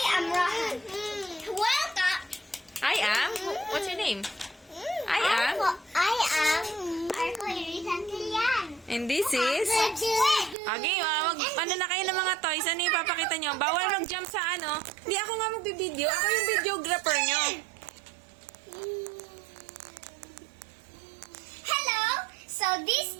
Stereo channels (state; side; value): drops out; left; at 10.6 s